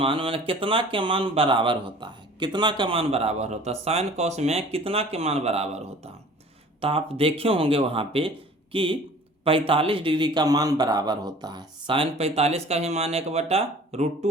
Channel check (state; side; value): normal; both; correlation 0.47